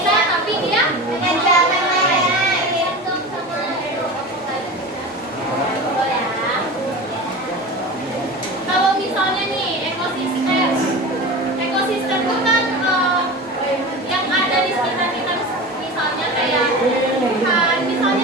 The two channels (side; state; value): both; normal; correlation 0.30